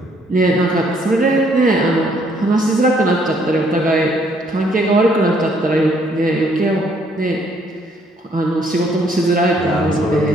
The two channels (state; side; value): normal; both; correlation 0.67